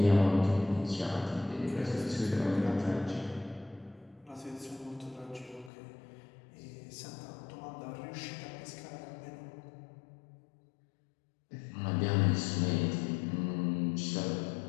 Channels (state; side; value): drops out; right; at 5.7 s